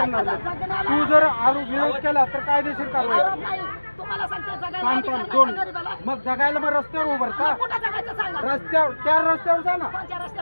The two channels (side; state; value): both; inverted; correlation -1.00